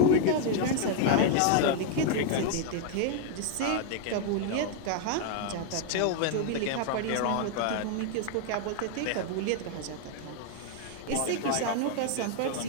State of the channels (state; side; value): different; both; correlation 0.00